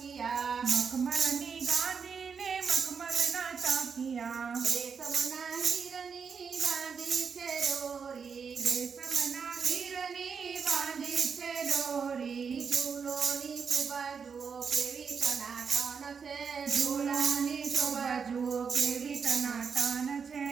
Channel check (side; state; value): left; quieter; 6.1 dB